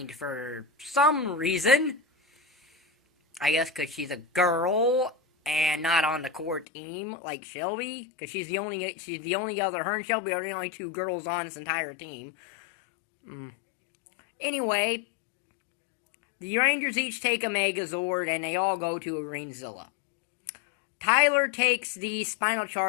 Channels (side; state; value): right; drops out; at 6.7 s